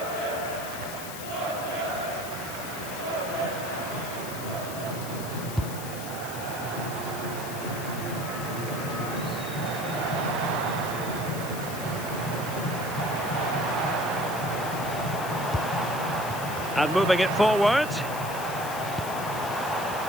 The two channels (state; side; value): noise; left; hiss, 10 dB below the sound